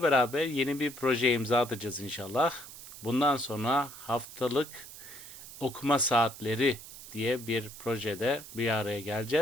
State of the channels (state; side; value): noise; right; hiss, 14 dB below the sound